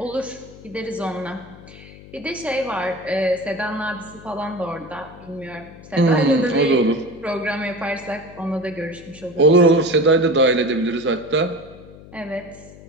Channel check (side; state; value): left; noise; hum, 19 dB below the sound